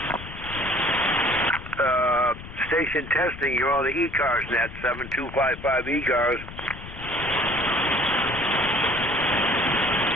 Station testing, you're on the ECARS net, 7255 ECARS.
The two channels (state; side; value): noise; left; rumble, 13 dB below the sound